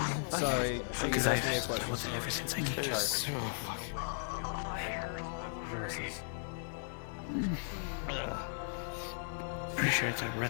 Sorry, she's asking me a question. Ever since I came. Sorry. Voices. Pretty sure it's our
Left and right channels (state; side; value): silent; right; 54 dB below the other